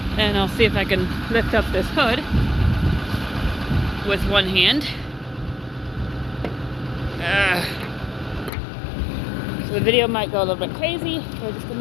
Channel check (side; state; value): right; drops out; at 8.5 s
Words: and I'll see if I can lift up this hood with one hand. So the video might go a little bit crazy for just a